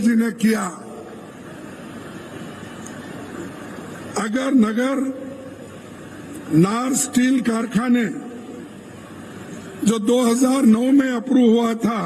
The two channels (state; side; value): identical; both; correlation 1.00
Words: जी ने किया। अगर नगर नार स्टील कारखाने जो 2009 में अप्रूव हुआ था,